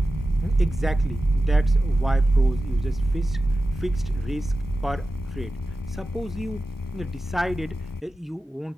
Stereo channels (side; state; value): both; normal; correlation 0.94